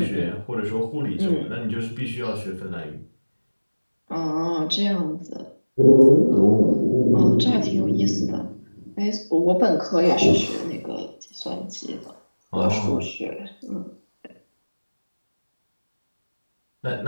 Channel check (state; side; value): inverted; both; correlation -1.00